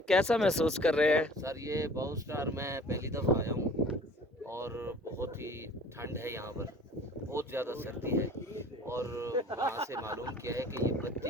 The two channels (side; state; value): both; normal; correlation 0.48